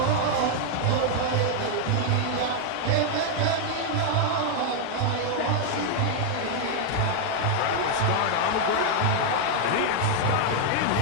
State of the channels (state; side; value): different; both; correlation 0.00